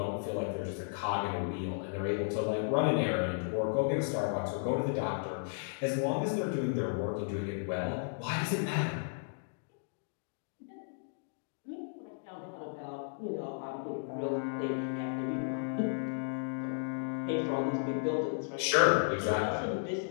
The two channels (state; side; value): silent; right; digital silence